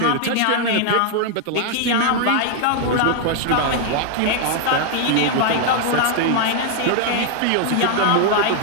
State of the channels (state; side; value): different; both; correlation 0.00